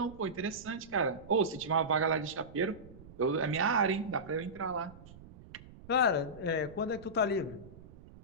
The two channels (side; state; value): right; noise; rumble, 19 dB below the sound